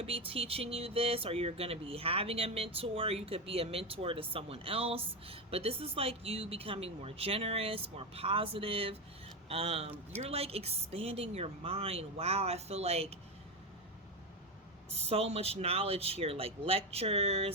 be teaching you this, or you're going to be having a mentor. You could be a mentor to someone else. But this is like you becoming more generous, more positive. You're like expanding your mind. Wow, I feel like so much knowledge here, like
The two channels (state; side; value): normal; both; correlation 0.13